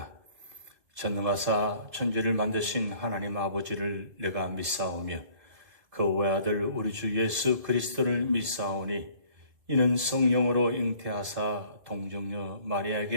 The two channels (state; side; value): late; left; 2.1 ms